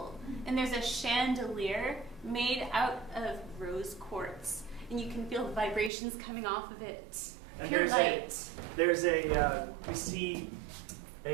And there's a chandelier made out of rose quartz, and you can feel the vibrations coming off of it. And Pure light. we see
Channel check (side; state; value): left; drops out; at 5.9 s